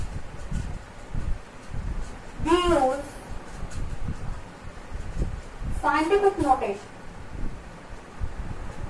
we use scientific notation.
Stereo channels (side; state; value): both; identical; correlation 1.00